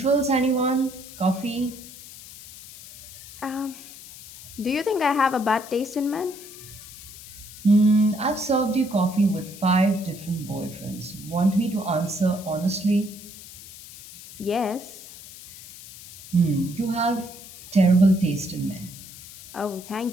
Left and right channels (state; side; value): noise; left; hiss, 16 dB below the sound